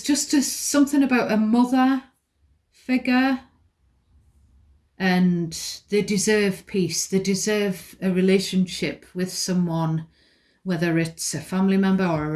just something about a mother figure, and they deserve peace. They deserve a relationship with someone, whether it's a family member or a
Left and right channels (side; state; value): both; identical; correlation 1.00